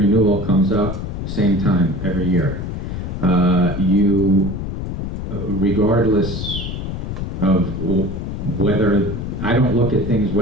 comes up, same time, every year. Regardless of whether, I don't look at things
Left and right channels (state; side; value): noise; left; rumble, 5 dB below the sound